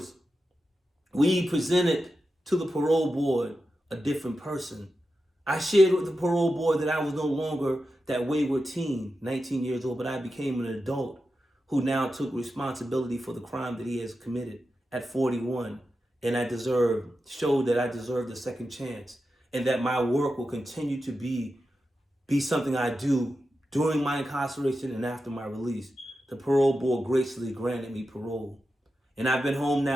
we presented to the parole board a different person. I shared with the parole board that I was no longer that wayward teen, 19 years old, but I became an adult who now took responsibility for the crime that he has committed at 41. And showed that I deserved a second chance, and that my work will continue to be something I do during my incarceration and after my release. The parole board graciously granted me parole. And I've been home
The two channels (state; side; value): normal; both; correlation 0.90